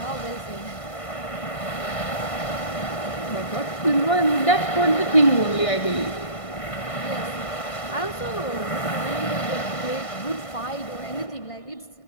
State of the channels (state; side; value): late; right; 1.5 ms